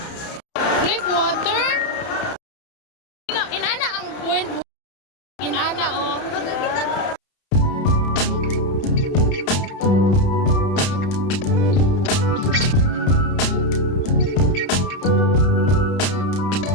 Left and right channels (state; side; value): late; right; 31 ms